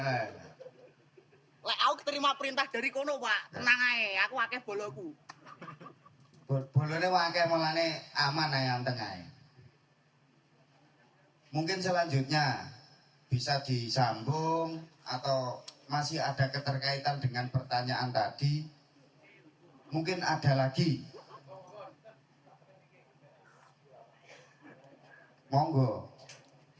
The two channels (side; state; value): both; identical; correlation 1.00